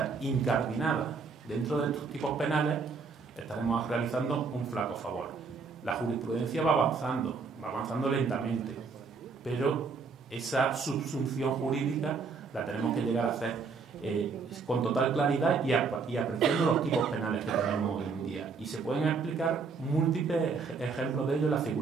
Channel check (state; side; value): quieter; left; 4.9 dB